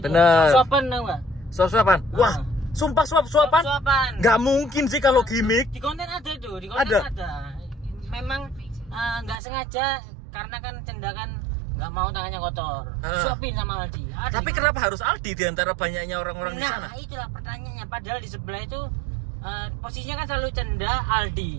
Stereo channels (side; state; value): left; drops out; at 9.3 s